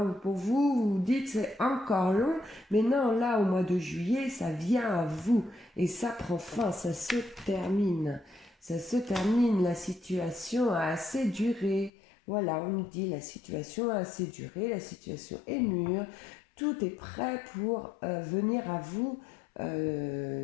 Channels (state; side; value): drops out; right; at 11.9 s